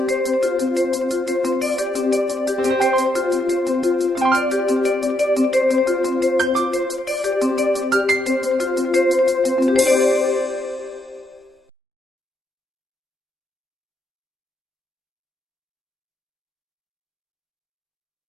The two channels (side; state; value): both; normal; correlation 0.79